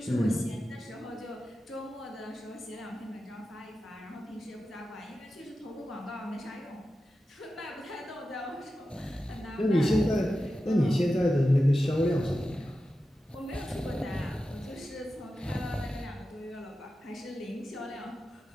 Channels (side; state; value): both; normal; correlation 0.92